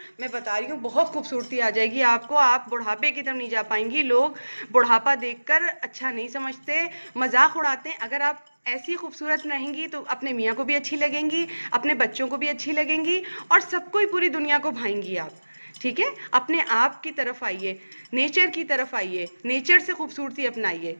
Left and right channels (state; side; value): inverted; both; correlation -1.00